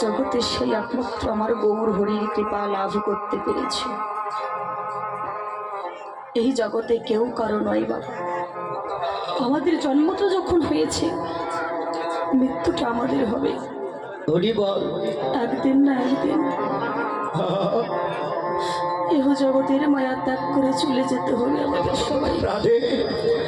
জগতে সেই একমাত্র আমার গৌর হরির কৃপা লাভ করতে পেরেছে। এই জগতে কেউ কারো নয় বাবা। আমাদের জন্মটা যখন হয়েছে, মৃত্যুটা আমাদের হবে একদিন না একদিন। এহ জগতের মায়া ত্যাগ করে চলে যেতে হবে আমাদের সবাই।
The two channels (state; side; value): identical; both; correlation 1.00